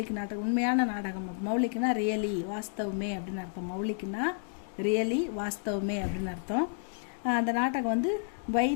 நாடகம், உண்மையான நாடகம். மௌலிக்னா ரியலி வாஸ்தவமே அப்படின்னு அர்த்தம், மௌலிக்னா ரியலி வாஸ்தவமே அப்படின்னு அர்த்தம். அந்த நாடகம் வந்து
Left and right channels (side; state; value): right; silent; digital silence